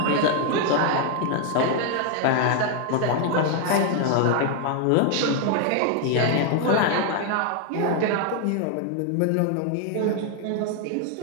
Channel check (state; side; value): different; both; correlation 0.00